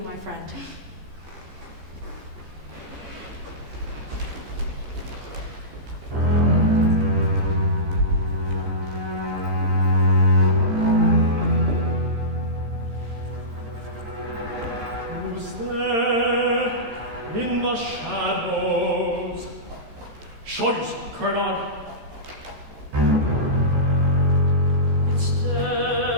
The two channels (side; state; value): left; late; 15 ms